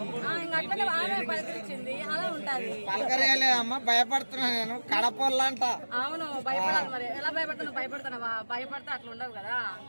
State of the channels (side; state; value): both; inverted; correlation -1.00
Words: ఇంకా అట్లనే ఆమె పలకరించింది, అలా ఉంటది. పలకరేలేదమ్మా, భయపడుతున్నా నేను కడపల్లంట. అవును, భయపడాలి. మరి ఎలా భయపడుతున్నావు? భయపడుతున్నావా? భయపడితే అట్లా ఉండవు కదా,